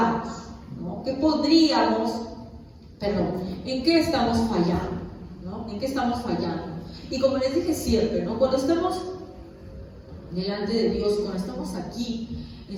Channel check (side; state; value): both; identical; correlation 1.00